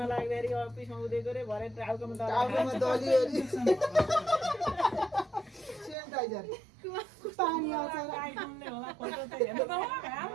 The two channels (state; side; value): drops out; left; at 6.0 s